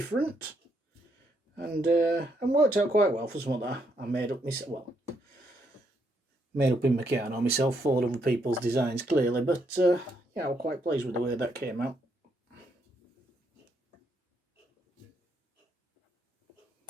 and worked out quite well for something that I made up myself. Well, made up in Meccano myself, followed other people's designs clearly, but yeah, I was quite pleased with the way that came out.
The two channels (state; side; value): normal; both; correlation 0.75